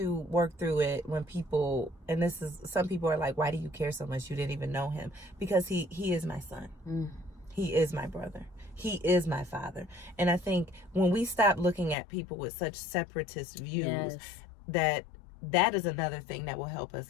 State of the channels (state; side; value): drops out; right; at 12.0 s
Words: work through it when people, and this is, some people are like, why do you care so much? You didn't even know him. Because he is my son. He is my brother. He is my father. And I think when we stop looking at people with such separatist views, that is another thing that will help us